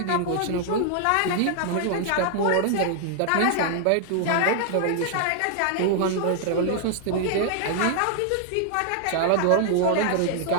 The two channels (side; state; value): both; different; correlation 0.00